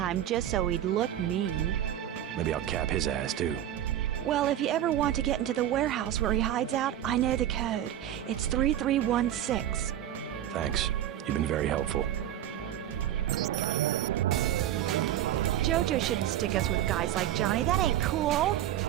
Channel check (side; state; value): left; quieter; 11.8 dB